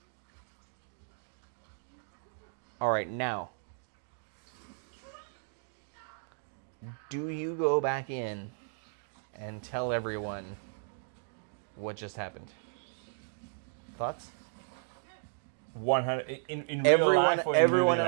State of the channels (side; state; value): left; silent; digital silence